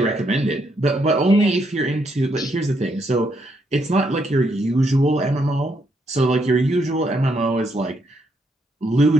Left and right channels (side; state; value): both; normal; correlation 0.76